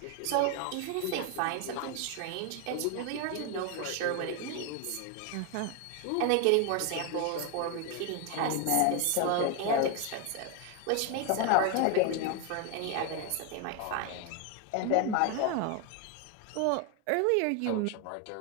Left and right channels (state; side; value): different; both; correlation 0.01